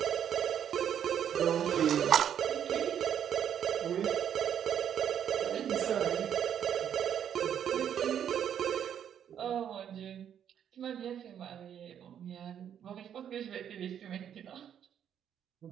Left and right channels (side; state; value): left; quieter; 9.2 dB